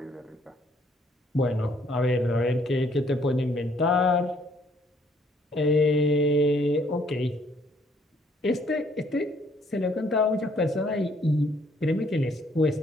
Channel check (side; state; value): both; normal; correlation 0.65